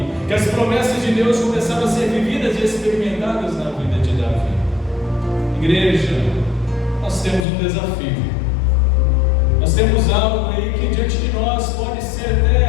que as promessas de Deus começaram a ser vividas e experimentadas na vida de Davi. Igreja, nós temos um desafio. Nós temos algo aí que diante de nós pode ser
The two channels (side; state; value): right; drops out; at 7.5 s